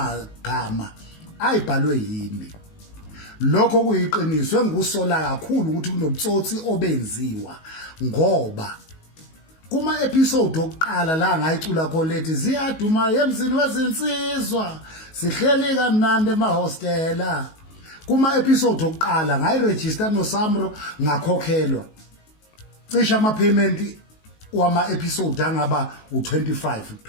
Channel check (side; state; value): right; late; 19 ms